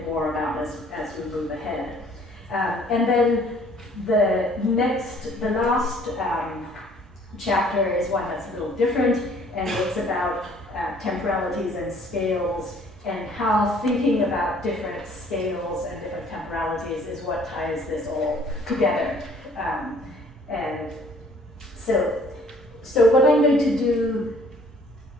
more about as we move ahead. And then the last chapter is one that's a little different, and it's about temporalities and scales, and how thinking about different scales and different temporalities is what ties this all together. And so what I'm going to do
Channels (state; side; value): normal; both; correlation 0.57